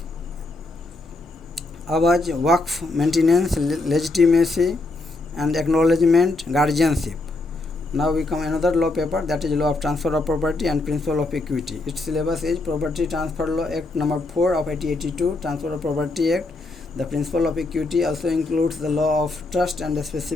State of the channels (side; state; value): right; quieter; 3.1 dB